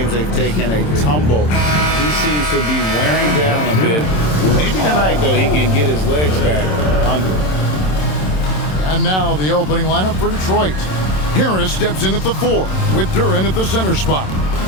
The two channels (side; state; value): right; late; 27 ms